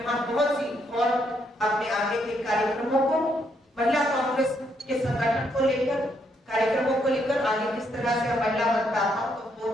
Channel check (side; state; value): both; normal; correlation 0.75